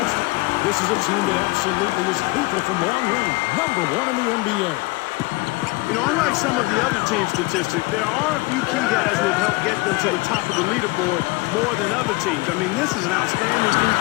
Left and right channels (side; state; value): right; quieter; 23.7 dB